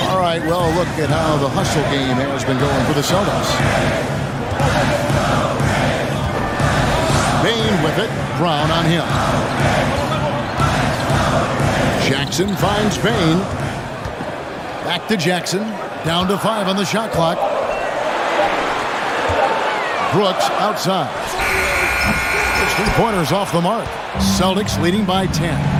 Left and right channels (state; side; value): identical; both; correlation 1.00